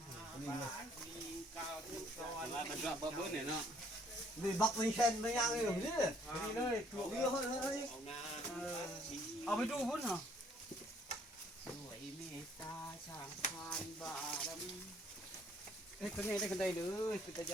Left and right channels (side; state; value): both; normal; correlation 0.63